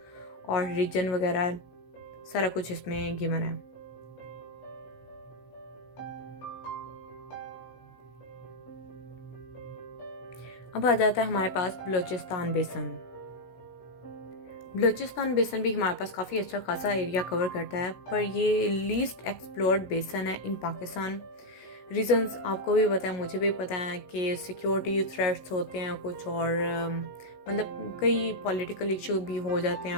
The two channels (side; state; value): right; late; 16 ms